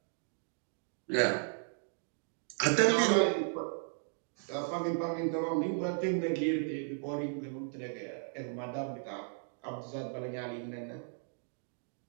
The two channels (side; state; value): left; silent; 54 dB below the other